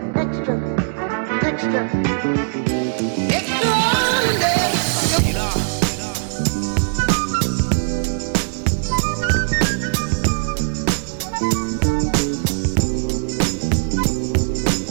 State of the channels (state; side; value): silent; left; digital silence